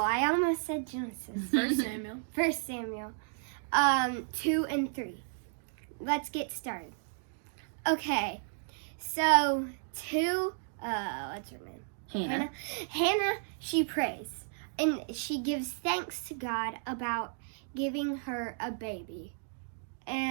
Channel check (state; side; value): silent; left; digital silence